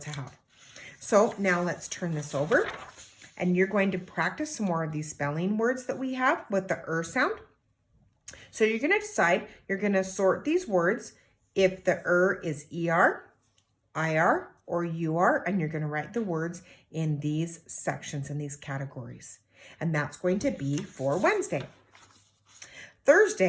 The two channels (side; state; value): both; identical; correlation 1.00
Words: have. So now let's turn this over. And you're going to practice some more of these spelling words that we have with the sound. So you're going to decide, you're going to sort these words if the is ER, IR, or UR, and you're going to write the words in these sections, in these categories. And that's going to be for Wednesday.